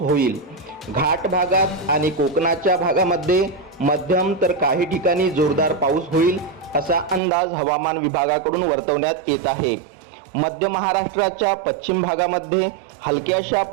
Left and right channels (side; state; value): left; drops out; at 7.2 s